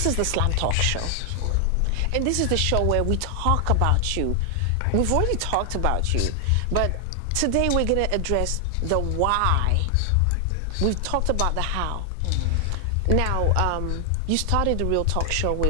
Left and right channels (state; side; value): different; both; correlation 0.00